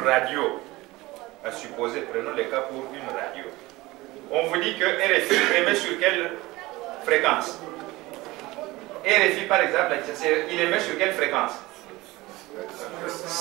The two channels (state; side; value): quieter; left; 20.1 dB